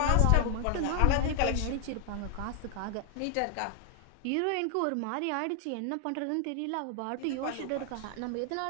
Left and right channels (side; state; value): both; different; correlation 0.00